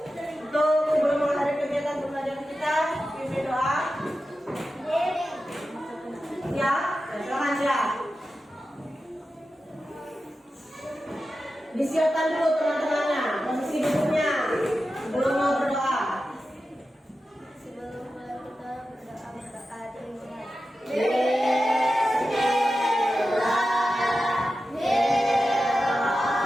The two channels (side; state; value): both; normal; correlation 0.92